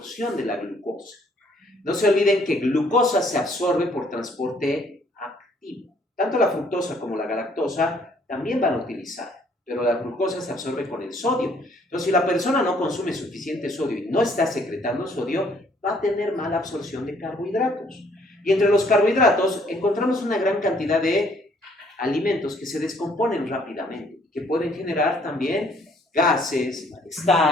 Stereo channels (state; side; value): normal; both; correlation 0.63